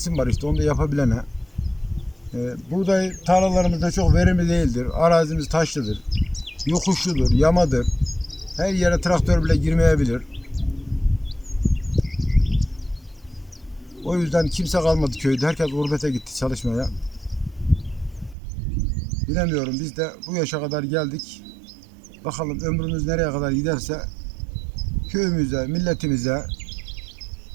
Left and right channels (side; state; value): left; drops out; at 18.4 s